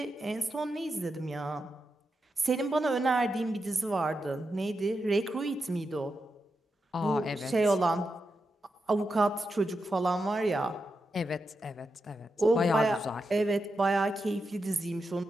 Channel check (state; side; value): normal; both; correlation 0.87